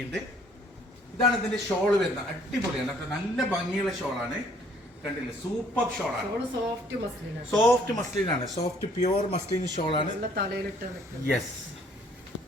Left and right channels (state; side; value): normal; both; correlation 0.61